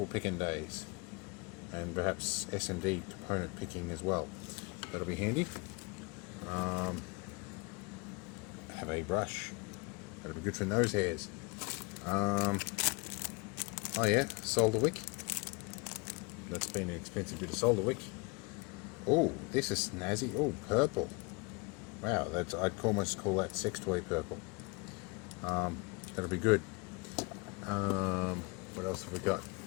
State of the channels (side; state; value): right; quieter; 29.5 dB